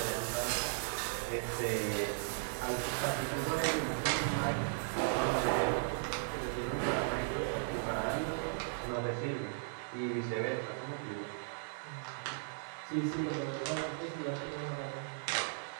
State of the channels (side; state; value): left; silent; 53 dB below the other